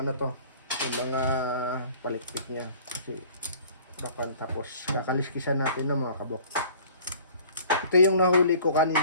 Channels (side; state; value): both; inverted; correlation -0.49